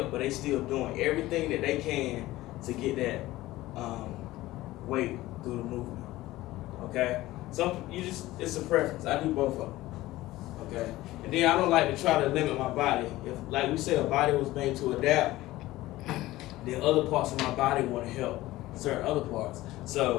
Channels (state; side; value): quieter; right; 17.2 dB